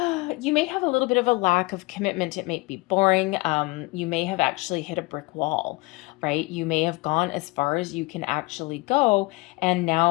have a little bit of a lack of commitment. It may be boring. You may have actually hit a brick wall, right? You may have gone as far as you can actually go, and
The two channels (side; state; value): right; quieter; 24.9 dB